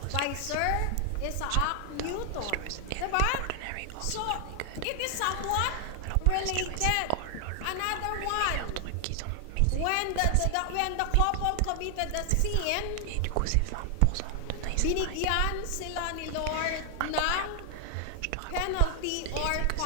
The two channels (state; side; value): different; both; correlation 0.00